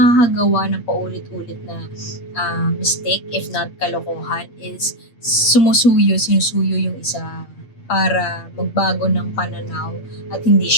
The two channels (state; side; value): late; right; 8.4 ms